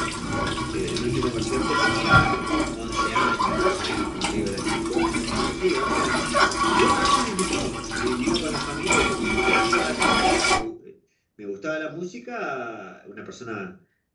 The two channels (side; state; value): both; identical; correlation 1.00